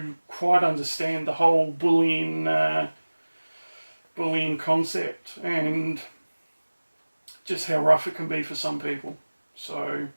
quite understand the whole bullying concept, and just how rough it can be for some people. So,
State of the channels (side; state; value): both; inverted; correlation -1.00